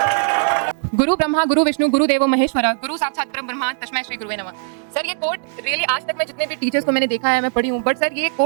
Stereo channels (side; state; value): left; silent; digital silence